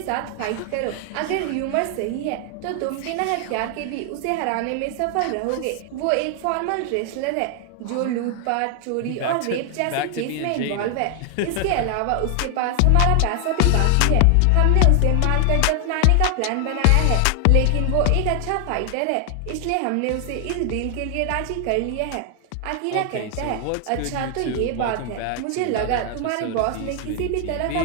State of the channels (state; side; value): different; both; correlation 0.00